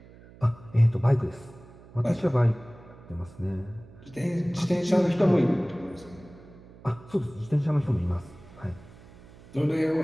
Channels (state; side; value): noise; right; hum, 21 dB below the sound